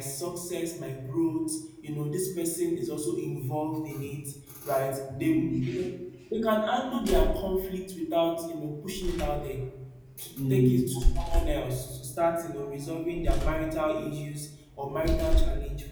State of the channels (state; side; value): identical; both; correlation 1.00